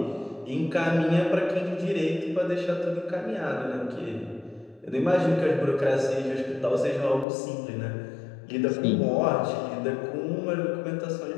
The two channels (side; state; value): right; drops out; at 7.2 s